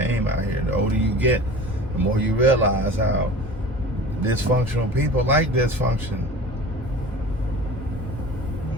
out here. The older you get, the more you realize how dysfunctional people like dysfunction.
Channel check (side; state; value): both; normal; correlation 0.38